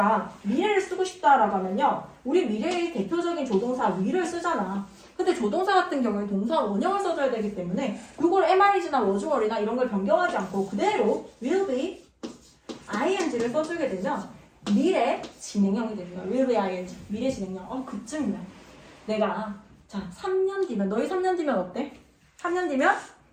미래를 쓰고 싶다라고 하면요. 우리 미래의 대표적인 조동사 will을 쓰잖아. 근데 조동사 같은 경우에 동사 원형을 써줘야 되기 때문에 이걸 am, is나 was, were나 이런 걸 변경하지 않고 그대로 will be ing를 써주게 되면 미래 진행형이 됩니다. will be ing. 미래 진행형. 그쯤이면 내가 자 3년 뒤면 너희 3년 뒤면 어때? 3년 뒤면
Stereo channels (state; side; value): identical; both; correlation 1.00